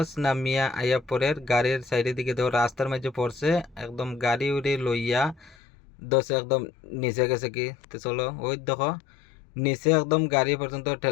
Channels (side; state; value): right; drops out; at 5.6 s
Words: নামিয়া আইয়া পরের গাড়ির সাইডের দিকে দেখো রাস্তার মাঝে পড়ছে, একদম গাড়ি উড়ে লইয়া দশ একদম নিচে গেছে কি। তো চলো ওই দেখো নিচে একদম গাড়ি পর্যন্ত